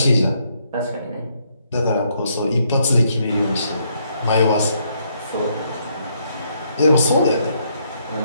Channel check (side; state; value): both; inverted; correlation -0.73